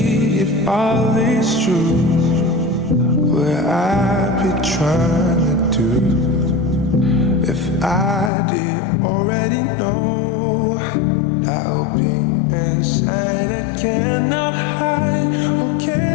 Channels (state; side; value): drops out; right; at 8.3 s